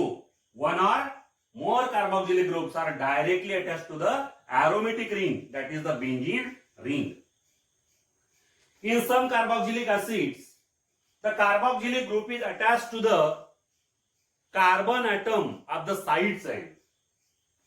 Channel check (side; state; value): both; identical; correlation 1.00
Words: one or more carboxylic groups, are directly attached to the aromatic ring, that is the benzene ring. In some carboxylic acids, the carboxylic group is attached to the carbon atom of the side chain.